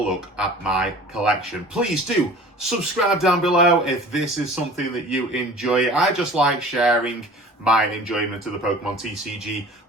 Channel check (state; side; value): normal; both; correlation 0.43